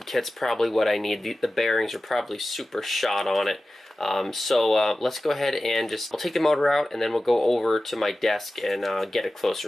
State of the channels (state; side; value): normal; both; correlation 0.95